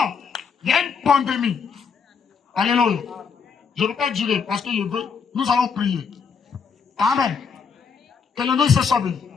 il y a une pandémie, alléluia, je ne veux pas durer parce que je veux, nous allons prier. Amen. Que le nom se soit béni.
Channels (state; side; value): quieter; right; 6.0 dB